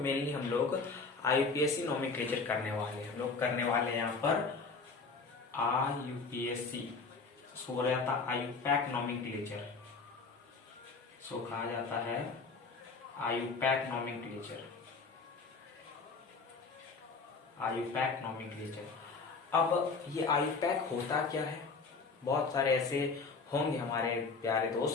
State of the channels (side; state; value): right; quieter; 4.4 dB